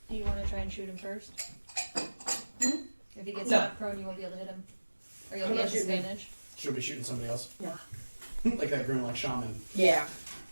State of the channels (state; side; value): inverted; both; correlation -1.00